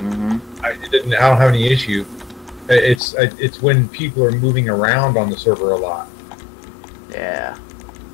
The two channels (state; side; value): drops out; right; at 3.0 s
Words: I don't have any issue. It's when people are moving around on the server a lot. Yeah.